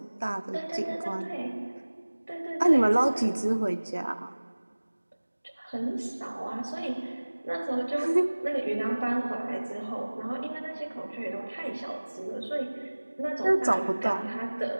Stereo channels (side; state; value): both; inverted; correlation -1.00